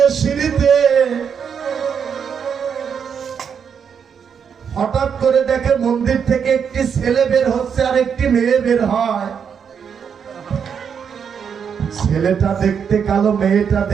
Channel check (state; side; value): quieter; left; 7.1 dB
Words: সিঁড়িতে, হঠাৎ করে দেখে মন্দির থেকে একটি ছেলে বের হচ্ছে আর একটি মেয়ে বের হয়। ছেলেটা দেখতে কালো, মেয়েটা